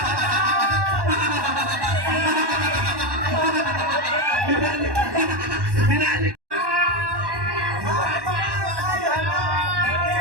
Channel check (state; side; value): late; left; 1.1 ms